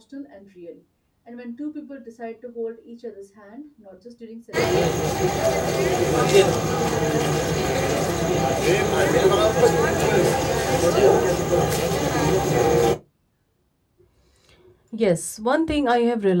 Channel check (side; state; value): both; identical; correlation 1.00